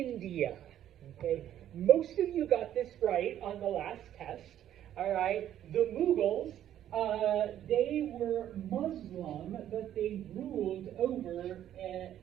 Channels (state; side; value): quieter; left; 11.3 dB